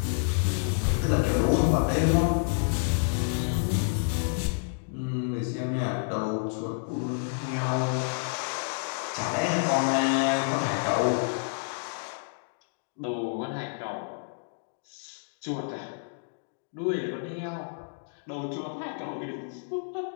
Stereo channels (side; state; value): right; silent; digital silence